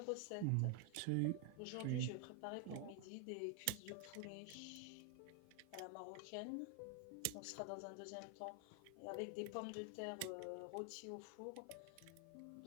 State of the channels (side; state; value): both; different; correlation 0.00